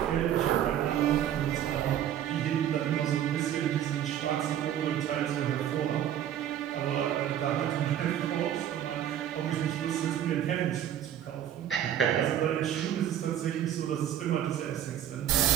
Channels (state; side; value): quieter; left; 10.7 dB